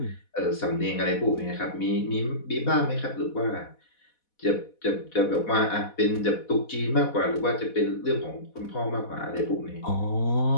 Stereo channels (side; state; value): right; late; 4.1 ms